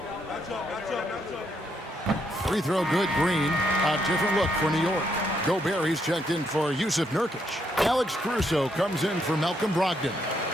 Free throw good, Green. A different look for New York. Gobert, he's checked in for Yusuf Nurkic. Alex Caruso comes in for Malcolm Brogdon.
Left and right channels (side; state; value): both; normal; correlation 0.75